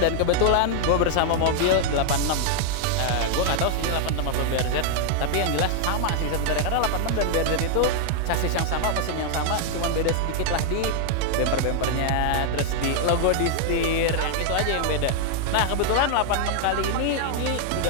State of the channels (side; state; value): both; different; correlation 0.00